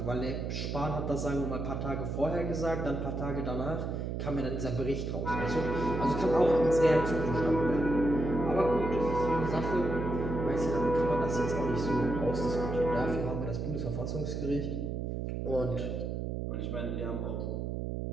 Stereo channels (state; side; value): noise; right; hum, 3 dB below the sound